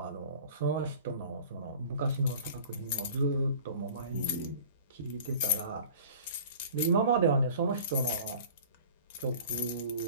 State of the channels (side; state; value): both; inverted; correlation -0.44